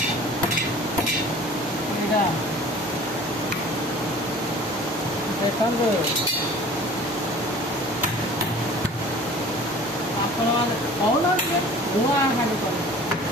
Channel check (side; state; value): left; noise; hum, 23 dB below the sound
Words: ଏଇଟା ଦେଖନ୍ତୁ ଆପଣମାନେ କହୁନାହାନ୍ତି ଧୂଆଁ ଖାଲି କରେ